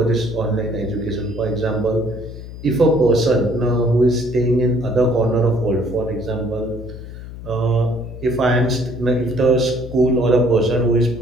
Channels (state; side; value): noise; left; hum, 12 dB below the sound